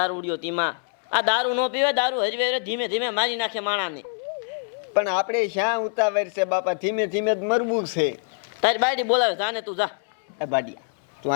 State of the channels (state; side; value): silent; right; 62 dB below the other